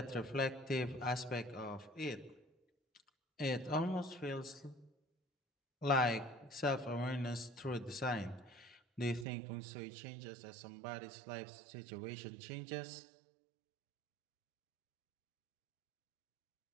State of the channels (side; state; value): left; drops out; at 9.2 s